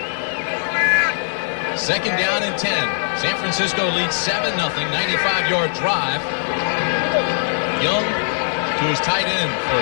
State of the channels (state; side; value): silent; right; digital silence